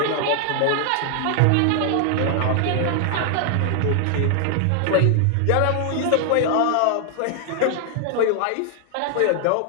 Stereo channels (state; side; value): different; both; correlation 0.00